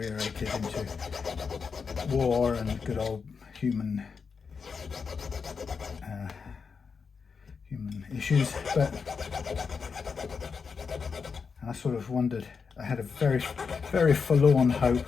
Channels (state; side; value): quieter; right; 5.5 dB